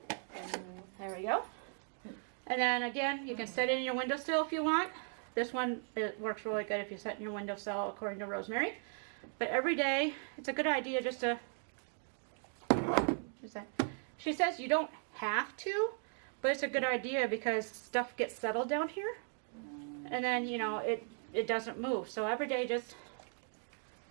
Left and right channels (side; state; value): left; silent; 53 dB below the other